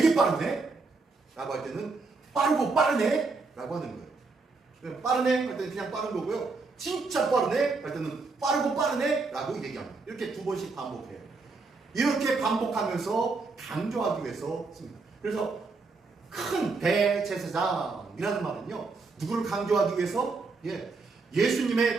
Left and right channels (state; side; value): quieter; left; 4.0 dB